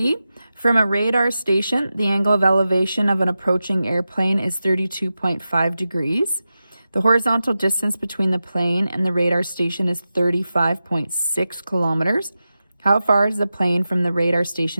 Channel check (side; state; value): both; inverted; correlation -0.93